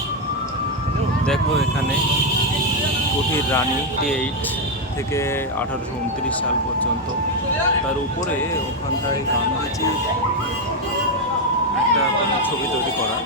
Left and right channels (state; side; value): normal; both; correlation 0.04